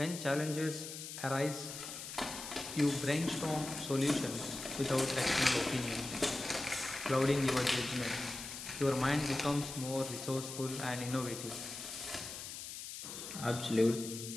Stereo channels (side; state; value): left; noise; hiss, 9 dB below the sound